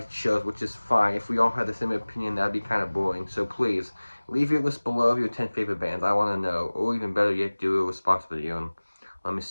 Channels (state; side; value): inverted; both; correlation -1.00